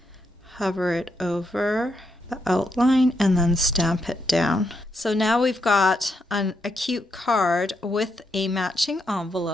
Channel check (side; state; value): both; normal; correlation 0.80